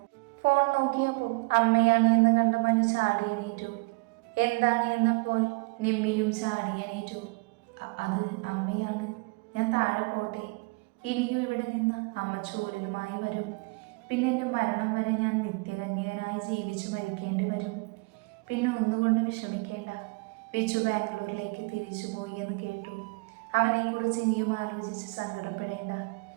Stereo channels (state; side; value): quieter; left; 29.9 dB